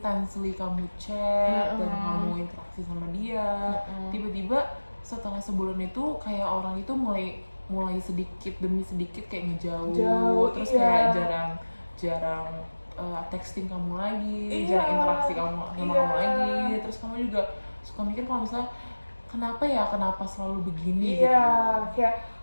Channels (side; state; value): both; inverted; correlation -1.00